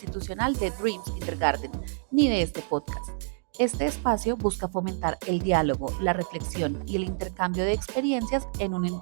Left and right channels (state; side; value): silent; left; digital silence